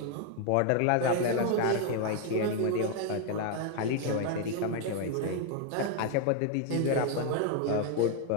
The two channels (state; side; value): different; both; correlation 0.01